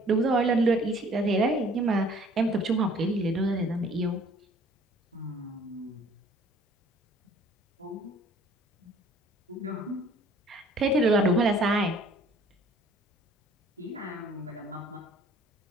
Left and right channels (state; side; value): normal; both; correlation 0.55